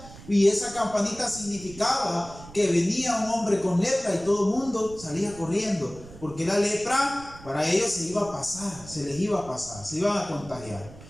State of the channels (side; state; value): right; noise; rumble, 18 dB below the sound